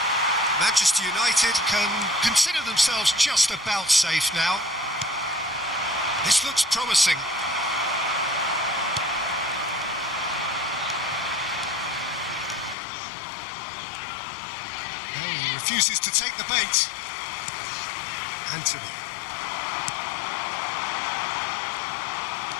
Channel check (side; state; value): right; drops out; at 12.8 s